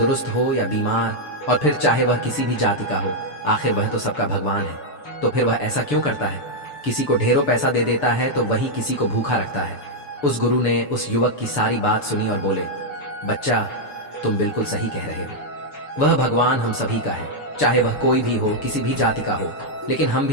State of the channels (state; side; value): late; right; 6.8 ms